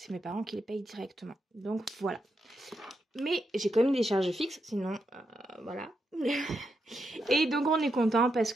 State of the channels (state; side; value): normal; both; correlation 0.84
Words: mes parents qui les payent directement. Donc voilà. Mais j'ai quand même des charges fixes, sinon voilà. Et donc on est content parce